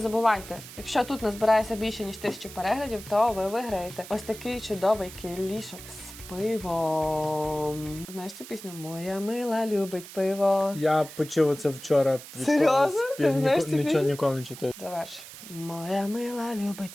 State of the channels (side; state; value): right; noise; hiss, 15 dB below the sound